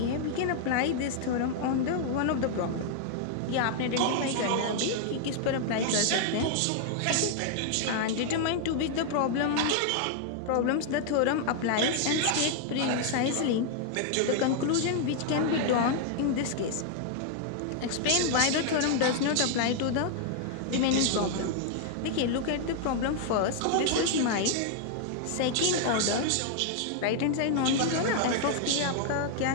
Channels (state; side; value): different; both; correlation 0.00